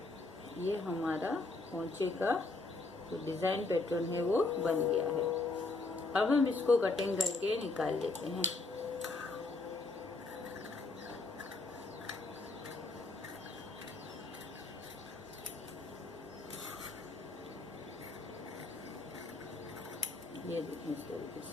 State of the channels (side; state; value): right; quieter; 3.4 dB